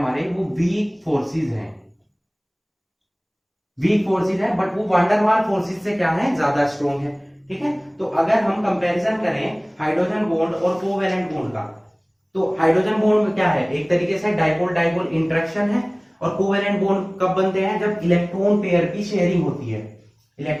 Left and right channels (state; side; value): identical; both; correlation 1.00